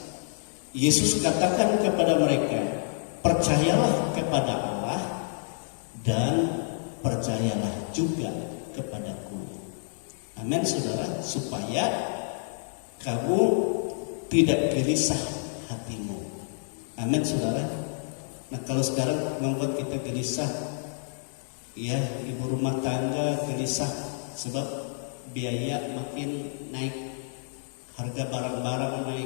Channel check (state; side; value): silent; right; digital silence